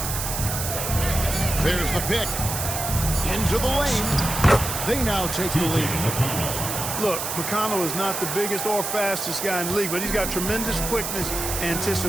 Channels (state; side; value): noise; right; hiss, 4 dB below the sound